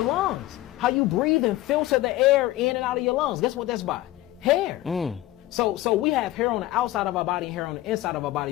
lungs. How you breathe and filter the air in and out of your lungs. Guess what that's by? Hair. So we have hair on the outside of our body and hair on the inside of our body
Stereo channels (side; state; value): right; quieter; 16.2 dB